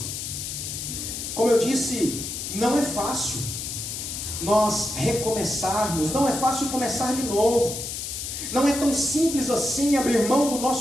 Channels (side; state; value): left; noise; hiss, 6 dB below the sound